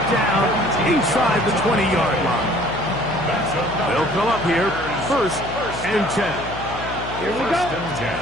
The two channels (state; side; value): noise; left; hum, 10 dB below the sound